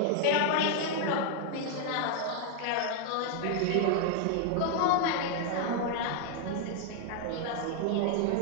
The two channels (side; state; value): both; different; correlation 0.00